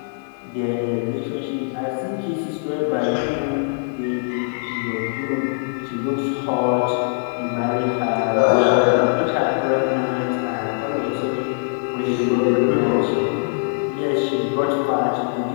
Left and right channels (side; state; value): right; silent; digital silence